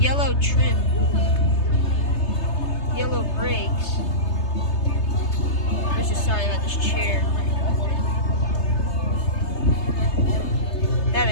trim. Yellow brakes. I'm just sorry about this chair. That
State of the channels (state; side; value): late; right; 3.3 ms